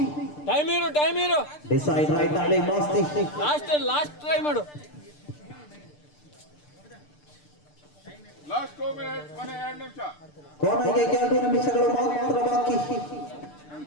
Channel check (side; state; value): right; late; 6.7 ms